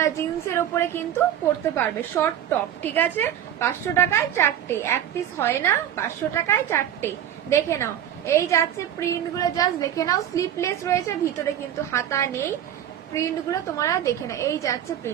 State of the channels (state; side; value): quieter; left; 10.6 dB